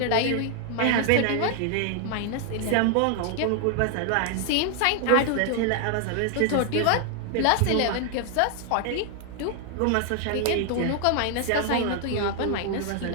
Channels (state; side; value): different; both; correlation 0.00